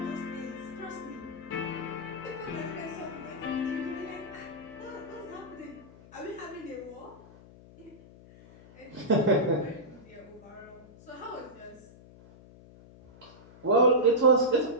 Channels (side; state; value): left; noise; hum, 21 dB below the sound